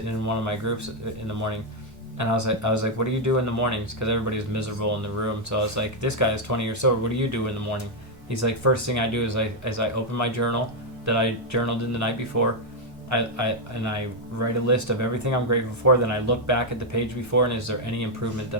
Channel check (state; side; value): normal; both; correlation 0.00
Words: in one of my groups in the morning. And I was like, what do you do in the mornings? Because everybody's miserable in the room. So I was like, this guy is 20 years sober. What do you do in the morning? He's like, first thing I do is I open my journal that I journaled in the night before. I write a list of everything I'm grateful for. Then I look back at the page before, and is there any improvement